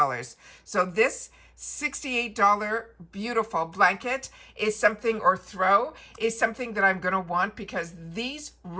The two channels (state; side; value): identical; both; correlation 1.00